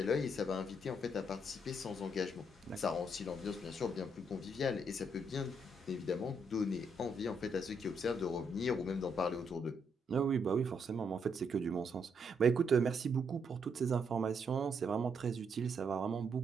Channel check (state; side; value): normal; both; correlation 0.75